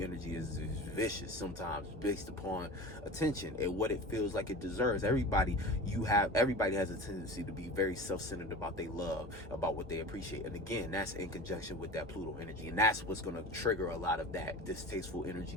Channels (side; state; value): both; normal; correlation 0.34